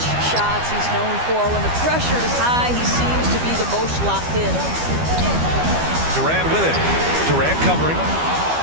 shots he's known for. When the pressure is high, he seems to be the most locked in. Durant with it. Durant covering.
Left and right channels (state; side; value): late; left; 12 ms